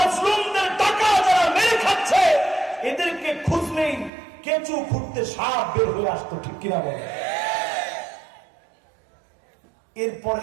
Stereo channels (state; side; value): drops out; left; at 4.1 s